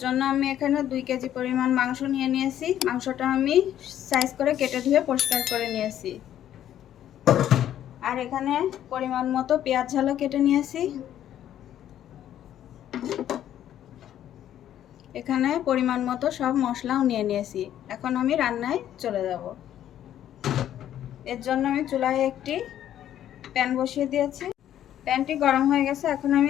জন্য আমি এখানে 2 কেজি পরিমাণ মাংস নিয়ে নিয়েছি। মাংসটা আমি সাইজ করে কেটে ধুয়ে পরিষ্কার করে নিয়েছি। আর এখানে পরিমাণ মতো পেঁয়াজ ঝালও কেটে নিয়েছি। এখানে পরিমাণ মতো সব মশলাও নিয়ে নিয়েছি। এখন আমি রান্নায় চলে যাব। এর জন্য আমি চুলায় একটি প্যান বসিয়ে দিয়েছি। প্যানটি গরম হয়ে গেছে। এখন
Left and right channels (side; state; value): right; quieter; 11.2 dB